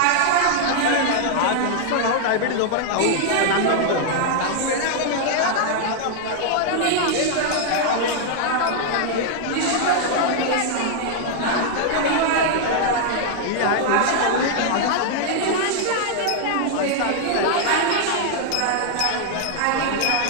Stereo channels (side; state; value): both; different; correlation 0.00